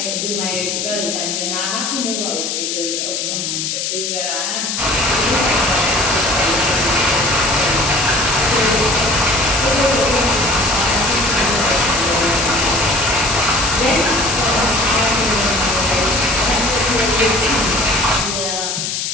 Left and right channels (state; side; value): noise; left; hiss, 2 dB below the sound